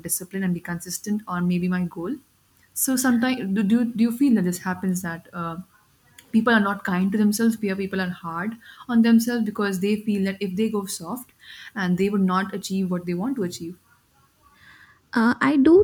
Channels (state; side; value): identical; both; correlation 1.00